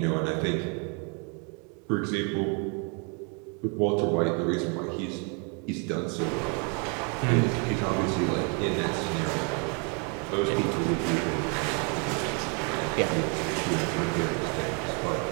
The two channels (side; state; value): left; quieter; 36.3 dB